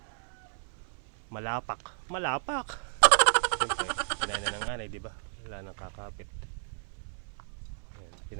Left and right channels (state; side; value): silent; left; 56 dB below the other